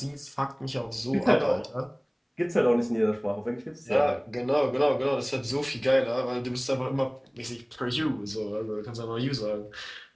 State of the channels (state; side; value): identical; both; correlation 1.00